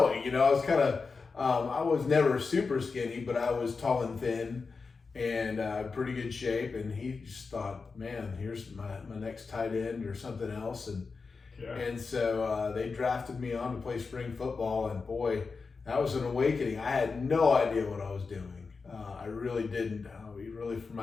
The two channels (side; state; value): right; quieter; 4.6 dB